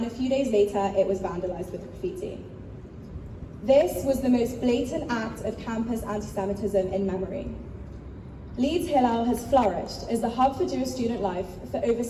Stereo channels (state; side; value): identical; both; correlation 1.00